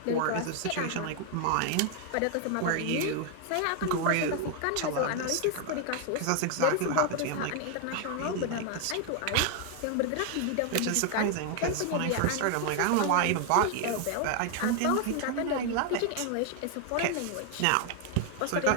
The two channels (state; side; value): different; both; correlation 0.00